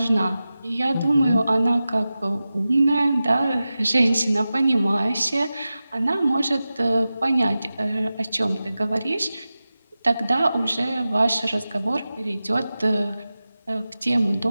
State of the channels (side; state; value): both; inverted; correlation -0.94